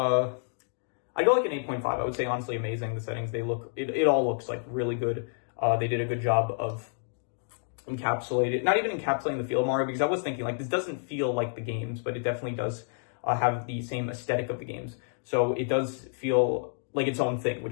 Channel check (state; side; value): silent; right; digital silence